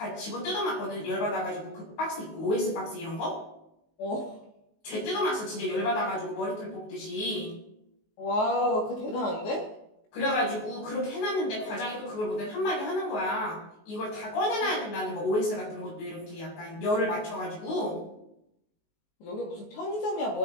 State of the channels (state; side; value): late; right; 19 ms